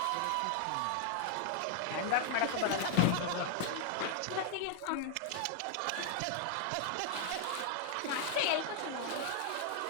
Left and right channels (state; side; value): different; both; correlation 0.00